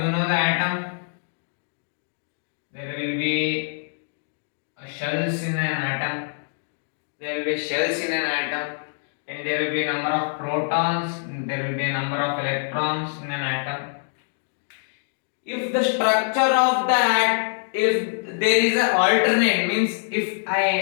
you know the atom, there will be shells in an atom, and there will be a number of protons, there will be a number of electrons in an atom. If the structure of that, if there is an alternate, means if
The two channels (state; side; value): silent; right; digital silence